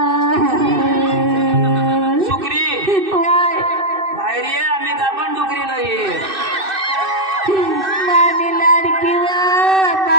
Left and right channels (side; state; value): left; late; 2.6 ms